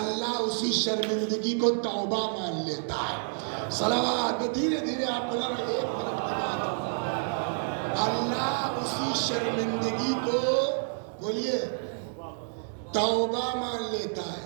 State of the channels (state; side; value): silent; left; digital silence